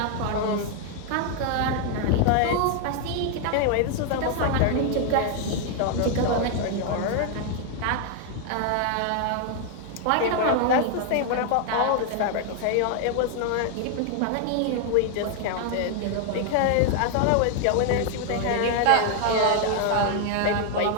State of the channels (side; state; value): both; different; correlation 0.00